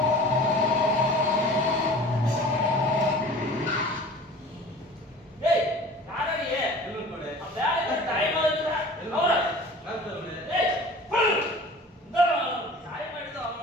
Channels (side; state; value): both; normal; correlation 0.42